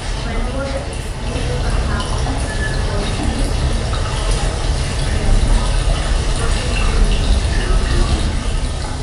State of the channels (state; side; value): identical; both; correlation 1.00